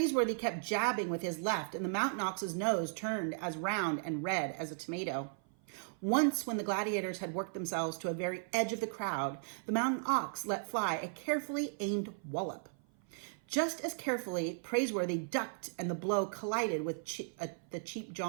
kept jabbing with his left, and the Mountain Ox's nose turned as round and red as a tomato. Once, when the gladiators had worked themselves to a very edge of the crowd, the Mountain Ox let fly a carefully aimed wallop. Just as carefully, Praiseworthy ducked, and the blow collided with the Cheap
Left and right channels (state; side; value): silent; left; 54 dB below the other